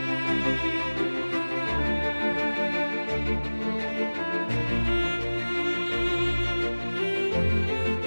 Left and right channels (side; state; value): both; inverted; correlation -1.00